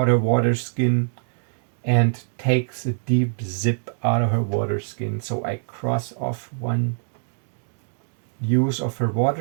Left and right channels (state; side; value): silent; left; digital silence